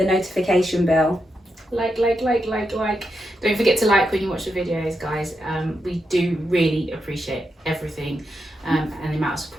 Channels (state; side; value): normal; both; correlation 0.85